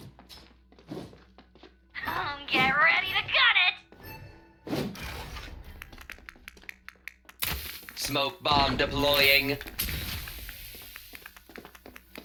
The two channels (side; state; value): both; identical; correlation 1.00